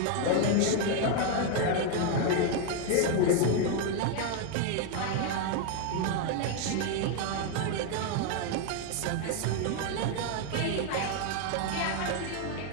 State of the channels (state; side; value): different; both; correlation 0.01